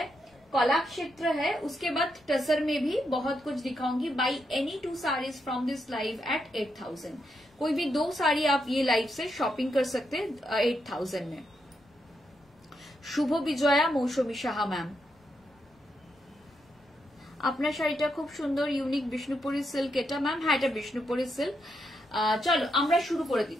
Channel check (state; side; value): normal; both; correlation 0.81